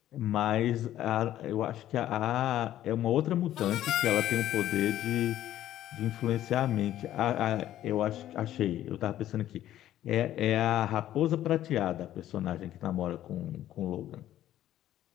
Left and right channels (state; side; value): quieter; right; 12.7 dB